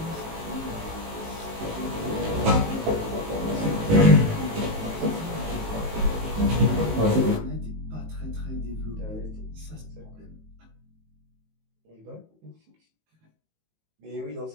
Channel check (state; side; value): late; left; 19 ms